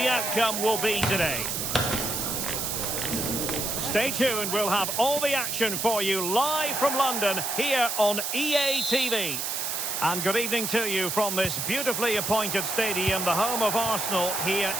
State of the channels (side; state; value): right; noise; hiss, 2 dB below the sound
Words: outcome will be today. Stay tuned, we'll have all the action for you live from London here on EA TV. And good evening to you from this beautifully appointed stadium, the home of Arsenal here